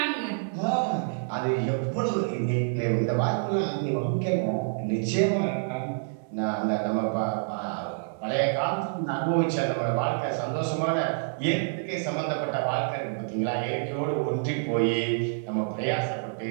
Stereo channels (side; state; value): left; silent; digital silence